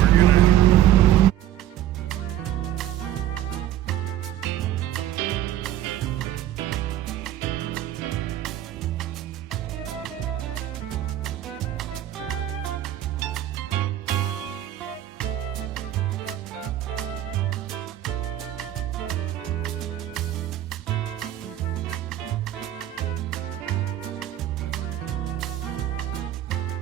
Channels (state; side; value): quieter; left; 12.4 dB